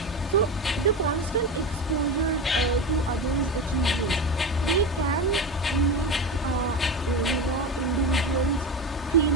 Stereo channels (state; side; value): normal; both; correlation 0.23